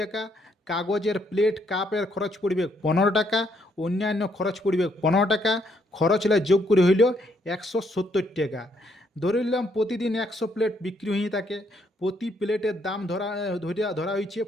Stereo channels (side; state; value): both; normal; correlation 0.72